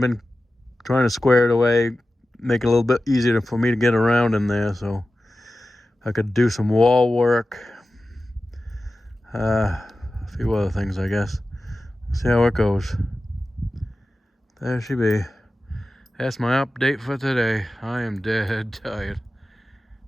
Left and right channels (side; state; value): both; normal; correlation 0.94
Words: trying to square it away, make it a little bit easier for me to get around in there, so I could do some wall work, a few other things, I guess. See how it goes. There she be. That's my update for today. I am dead tired.